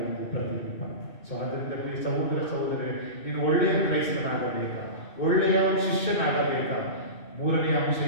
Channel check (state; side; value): late; right; 2.6 ms